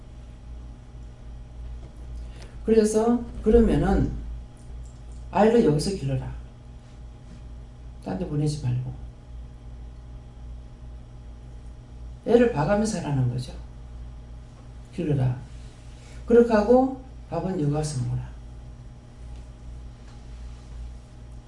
그래서 그러면은 아이를 여기서 길러라. 딴 데 보내지 말고. 애를 봐가면서 하라는 거죠. 길러라. 그렇게 하고 밥은 여기 와서 먹어라.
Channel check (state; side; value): identical; both; correlation 1.00